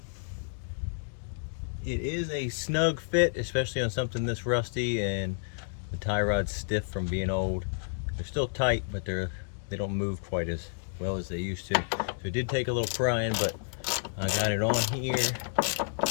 It is a snug fit, especially on something this rusty, and the tie rod's stiff from being old. They're still tight, but they don't move quite as well as they used to. So it did take a little prying, but I got it on here,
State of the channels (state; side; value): silent; right; digital silence